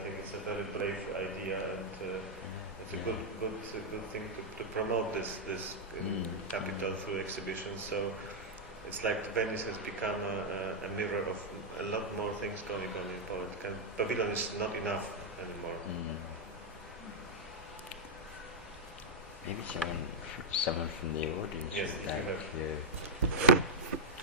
think it's a very brave idea, and it's a good thing to promote this capital through exhibitions. So it's like Venice has become a mirror of a lot more things going on in Poland. Pavilion is not enough anymore. Maybe someone from the audience. Yes, would like to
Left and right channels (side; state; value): both; normal; correlation -0.05